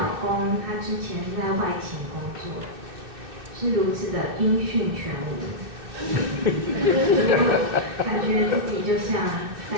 公，他之前是在外勤工作，是如此的音讯全无，感觉自己就像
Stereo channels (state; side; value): late; left; 2.6 ms